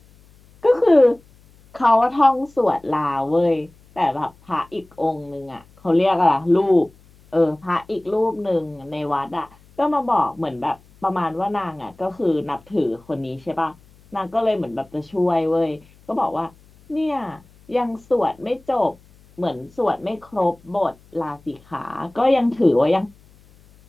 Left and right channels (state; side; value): noise; left; hum, 28 dB below the sound